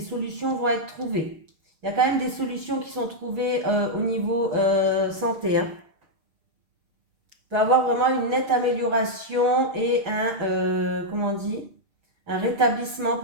vont être trouvées. Il y a quand même des solutions qui sont trouvées au niveau santé. Hein. Il peut y avoir vraiment une nette amélioration et comment on dit, un rétablissement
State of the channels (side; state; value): left; late; 6.6 ms